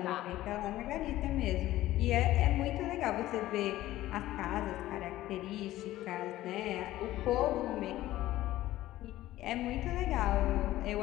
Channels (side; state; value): right; quieter; 15.3 dB